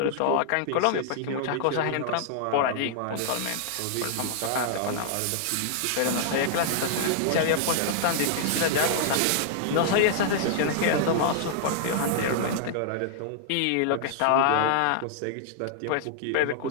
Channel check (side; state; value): both; different; correlation -0.01